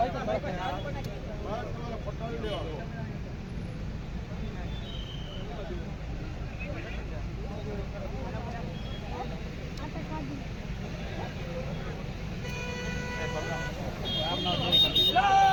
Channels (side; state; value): both; identical; correlation 1.00